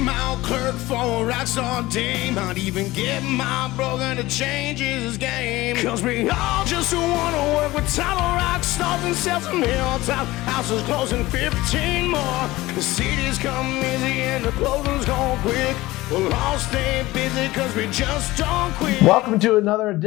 old clerk for a rockstar dame. Might even get my broker to change his game. Cause we all just wanna work with title rock stars and sell some hilltop houses closing 15 more. The cities come easy and the closings go quick. We'll all stay busy cause we just don't quit. Welcome to another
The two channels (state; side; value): quieter; right; 18.6 dB